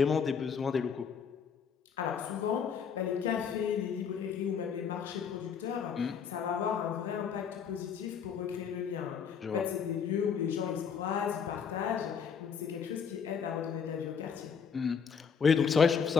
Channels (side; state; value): right; quieter; 6.7 dB